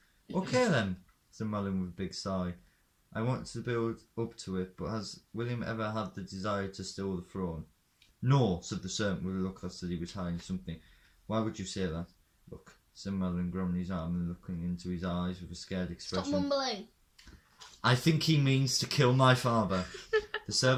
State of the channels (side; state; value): both; identical; correlation 1.00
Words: Okay then, said Madeline with a big sigh. I want to build up to it, but has William ever had the desire to steal the throne? No, said the servant with a look that said he was hiding something. Why would you say that? Look, said Madeline, grabbing his arm and looking into his eyes with a scared expression. Stop mumbling. I think he means to kill my father. The